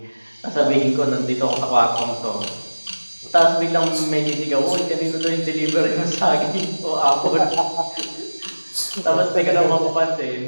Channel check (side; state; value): both; inverted; correlation -1.00